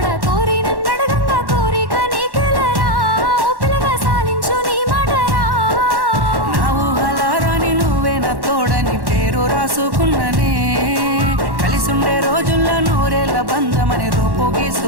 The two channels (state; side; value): late; left; 1.1 ms